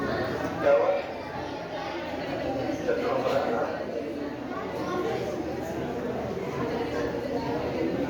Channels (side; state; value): both; identical; correlation 1.00